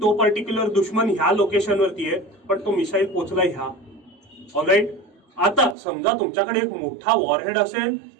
तो पर्टिक्युलर दुश्मन ह्या लोकेशनवरती आहे पण तो मिसाईल पोचला ह्या. ऑलराईट, आता समजा तुमच्याकडे एक मोठा वॉरहेड असेल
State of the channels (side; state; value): left; drops out; at 5.8 s